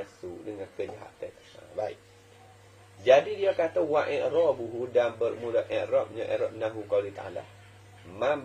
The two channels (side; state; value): both; identical; correlation 1.00